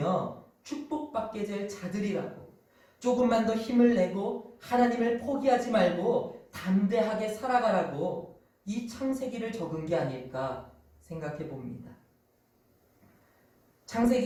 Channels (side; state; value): both; identical; correlation 1.00